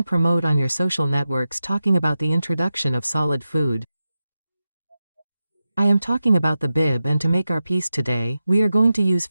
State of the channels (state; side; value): inverted; both; correlation -0.92